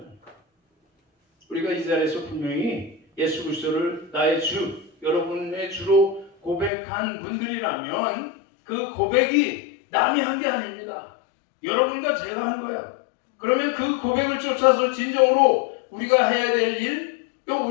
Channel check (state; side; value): drops out; right; at 6.7 s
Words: 우리가 이 자리에서 분명히 예수 그리스도를 나의 주, 여러분의 주로 고백한 분들이라면 그 고백이 남이 한 게 아닙니다. 여러분과 제가 한 거야. 그러면 그 고백을 쫓아서 진정으로 우리가 해야 될 일, 또